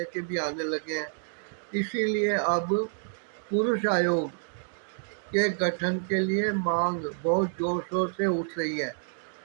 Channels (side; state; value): left; silent; digital silence